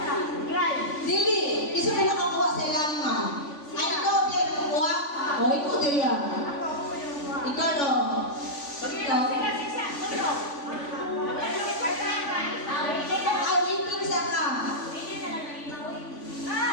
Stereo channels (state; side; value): late; right; 3.5 ms